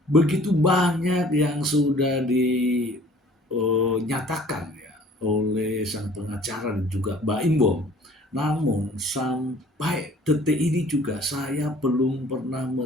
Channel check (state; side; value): normal; both; correlation 0.53